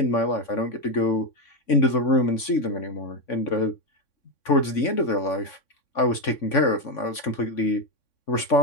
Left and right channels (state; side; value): late; right; 3.6 ms